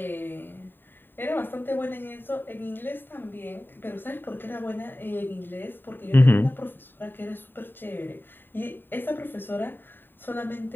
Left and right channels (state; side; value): late; right; 0.095 ms